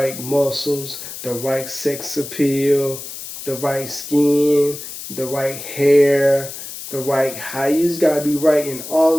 muscles, the right sex appeal, the right skin, the right hair, the right height. You just gotta be right in all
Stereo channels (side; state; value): left; noise; hiss, 11 dB below the sound